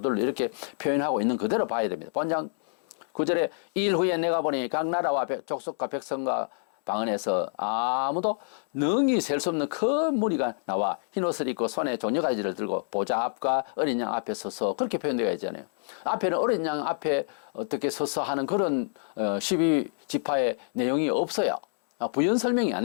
이렇게 표현하고 있는 그대로 봐야 됩니다. 본장 9절에 2일 후에 내가 보니 각 나라와 족속과 백성과 방언에서 아무도 능히 셀 수 없는 큰 무리가 나와 흰옷을 입고 손에 종려가지를 들고 보좌 앞과 어린 양 앞에 서서 그렇게 표현되어 있잖아요. 앞에는 어린 양 앞에 어떻게 서서 하는 그런 12지파의 내용이 없어요. 부연 설명이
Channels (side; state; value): right; silent; 60 dB below the other